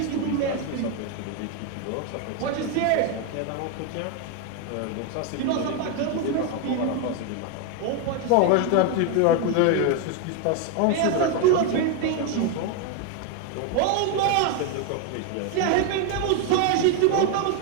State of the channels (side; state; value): both; different; correlation 0.01